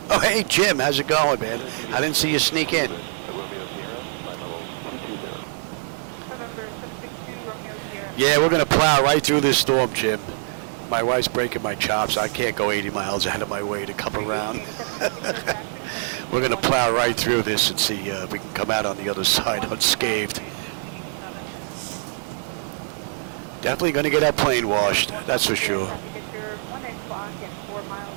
Oh, hey, Jim, how's it going, man? I didn't see you sneak in. Yeah, we're going to plow right through this storm, Jim. My wife's breaking my chops. I can't go 80 miles out of my way to come around. We're going to plow right through this and see if we can come out on the other side unscathed. Definitely going to get our plane washed, that's for sure.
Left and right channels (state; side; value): silent; left; digital silence